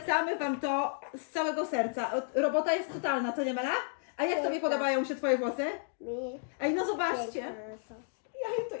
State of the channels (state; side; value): silent; right; digital silence